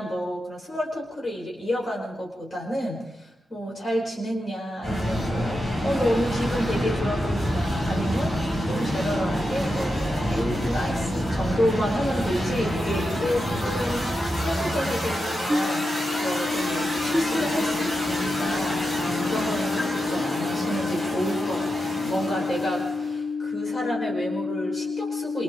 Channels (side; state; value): both; normal; correlation 0.88